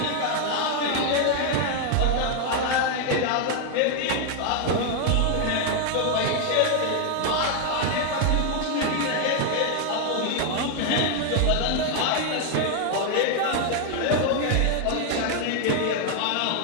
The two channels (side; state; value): both; different; correlation 0.00